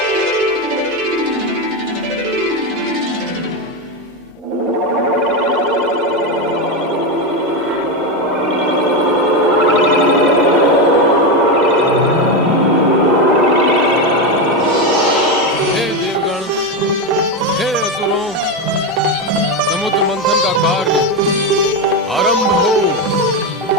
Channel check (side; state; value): both; normal; correlation 0.12